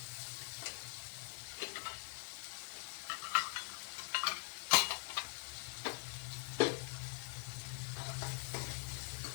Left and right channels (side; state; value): right; silent; digital silence